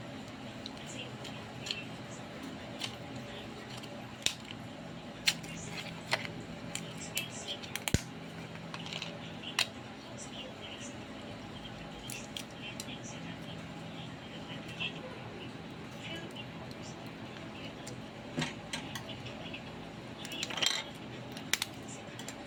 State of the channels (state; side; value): identical; both; correlation 1.00